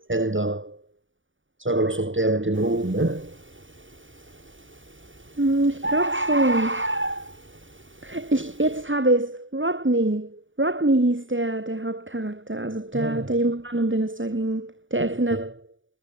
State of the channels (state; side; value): late; left; 0.57 ms